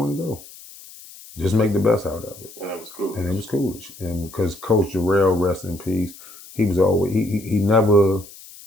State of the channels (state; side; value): noise; left; hiss, 19 dB below the sound